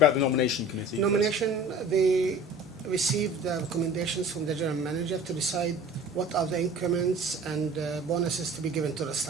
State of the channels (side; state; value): both; normal; correlation 0.43